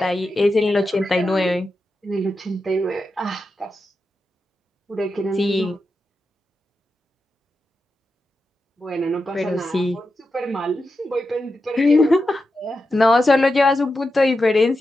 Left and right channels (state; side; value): normal; both; correlation 0.89